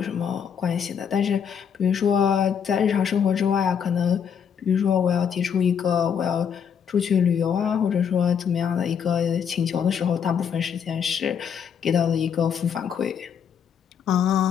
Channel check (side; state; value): right; quieter; 7.5 dB